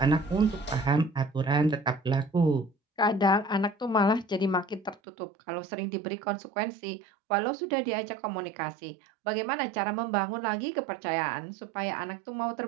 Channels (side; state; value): left; drops out; at 5.0 s